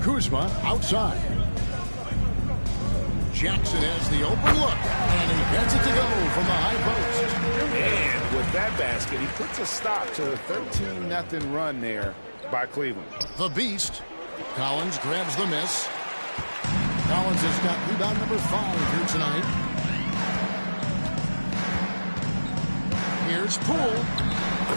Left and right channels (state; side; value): inverted; both; correlation -1.00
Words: Kuzma outside. Jackson has the open look, and he gets it to go from the high post. And with that basket, he puts a stop to a 13-0 run there by Cleveland. The Beast. Collins grabs the miss. Collins has got rebound number 5 here tonight. Here's Poole.